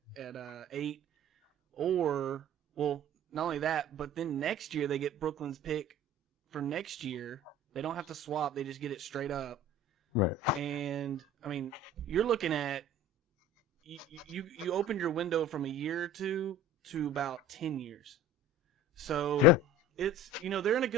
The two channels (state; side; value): normal; both; correlation 0.42